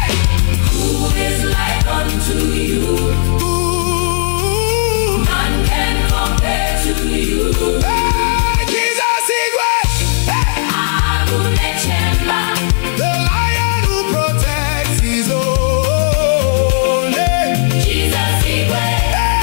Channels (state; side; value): silent; right; digital silence